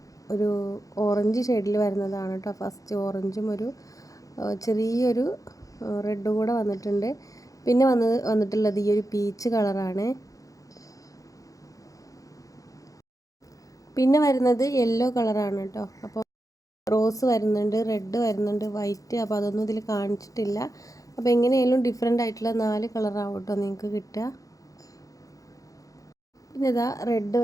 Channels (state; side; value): late; right; 0.17 ms